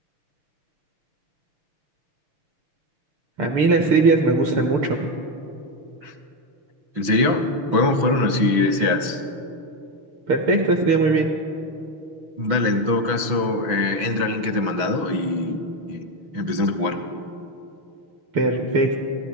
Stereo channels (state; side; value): late; left; 6.2 ms